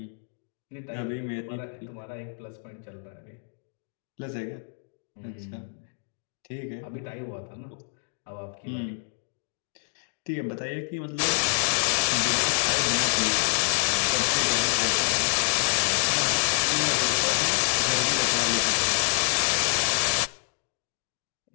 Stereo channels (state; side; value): silent; right; digital silence